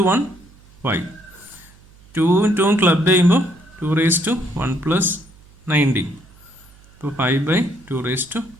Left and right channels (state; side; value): noise; right; hum, 26 dB below the sound